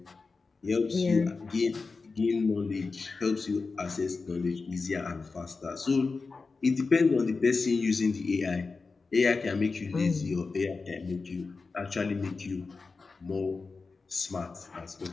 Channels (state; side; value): quieter; right; 4.2 dB